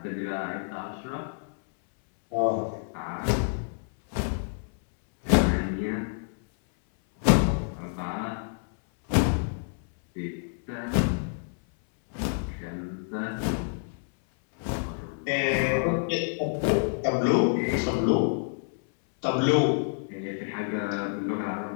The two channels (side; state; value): right; silent; 59 dB below the other